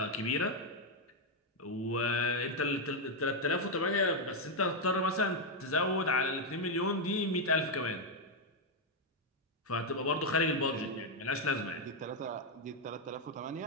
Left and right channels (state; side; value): normal; both; correlation 0.01